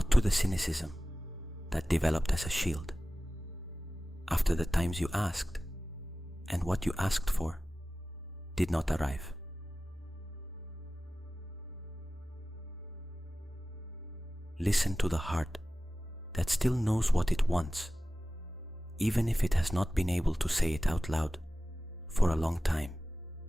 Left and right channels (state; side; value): normal; both; correlation 0.95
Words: to the cynicism that developed as a shield after the times you asked and what you asked for did not arrive. Listen to the heart that still knows what it wants, even if it has not been able to say it out loud for a long time.